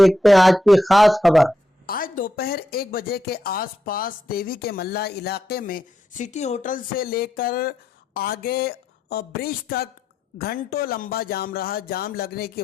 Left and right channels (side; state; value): both; normal; correlation 0.83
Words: हैं आज की खास खबर। आज दोपहर 1 बजे के आसपास देवी के मल्ला इलाके में सिटी होटल से लेकर आगे ब्रिज तक घंटों लंबा जाम रहा। जाम लगने की